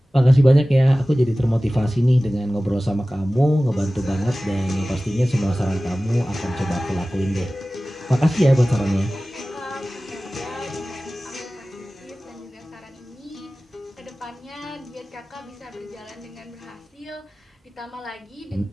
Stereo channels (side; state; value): both; normal; correlation 0.97